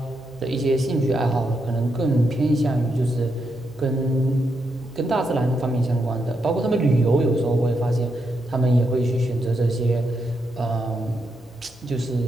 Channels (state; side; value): normal; both; correlation 0.82